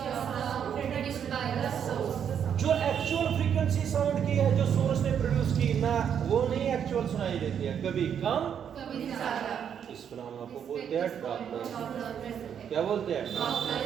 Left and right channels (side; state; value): left; quieter; 8.3 dB